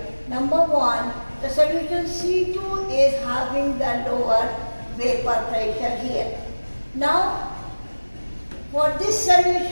Number one, the solution C2 is having the lower vapor pressure here. Now, for this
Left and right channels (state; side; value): inverted; both; correlation -1.00